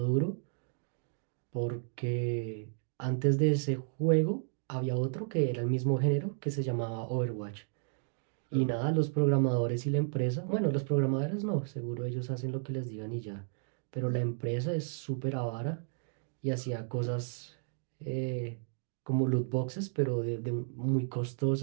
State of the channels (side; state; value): left; silent; digital silence